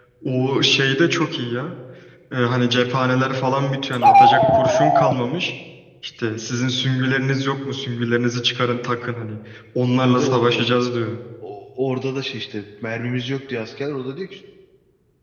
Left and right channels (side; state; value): both; identical; correlation 1.00